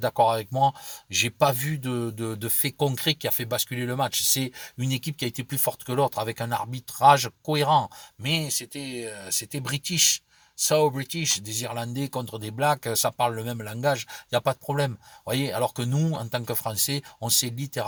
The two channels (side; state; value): both; identical; correlation 1.00